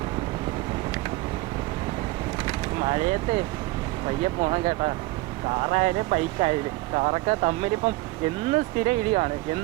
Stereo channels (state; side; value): quieter; left; 20.6 dB